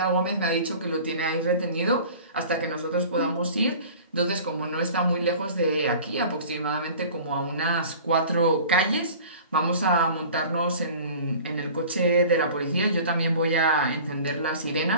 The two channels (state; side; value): inverted; both; correlation -0.43